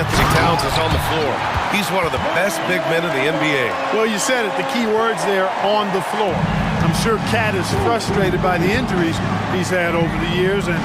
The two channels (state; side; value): identical; both; correlation 1.00